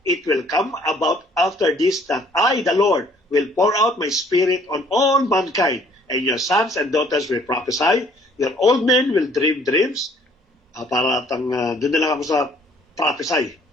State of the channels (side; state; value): both; normal; correlation 0.59